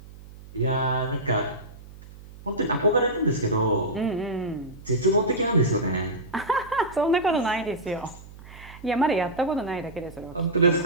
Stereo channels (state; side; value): noise; right; hum, 18 dB below the sound